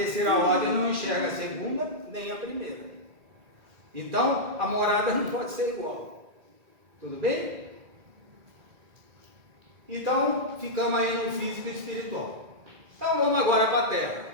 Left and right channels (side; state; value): left; late; 2.0 ms